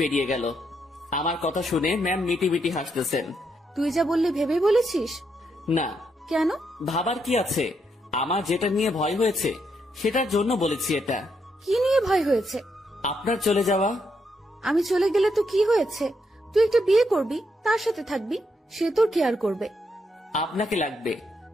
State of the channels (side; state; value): both; normal; correlation 0.79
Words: বেরিয়ে গেল। আমার কথা শুনে ম্যাম মিটি মিটি হাসতেছেন। তুই যা বললি ভেবে বলেছিস? না, কেন? ভাবার কি আছে? আমার যেটা নিয়ে ভয় হয়েছে সেটার জন্য বলেছি এটা। কি নিয়ে ভয় হয়েছে? আপনার চলে যাওয়া। আমি চলে গেলে তো কি হয়েছে? তুই একটা বিয়ে করবি, তার সাথে থাকবি, সে তোর কেয়ার করবে। আপনাকে লাগবে।